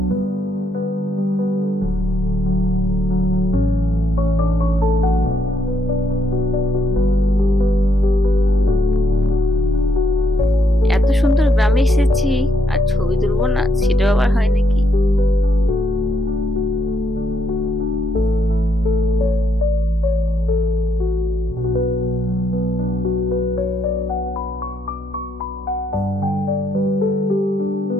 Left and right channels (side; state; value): both; normal; correlation 0.75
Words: এত সুন্দর গ্রামে এসেছি আর ছবি তুলবো না, সেটাও আবার হয় নাকি?